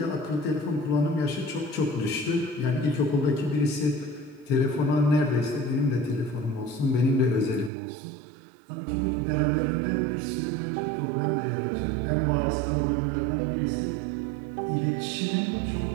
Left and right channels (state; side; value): drops out; left; at 7.7 s